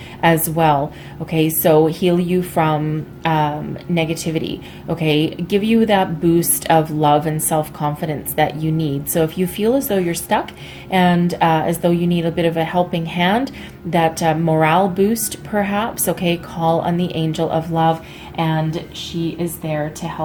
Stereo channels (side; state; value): both; identical; correlation 1.00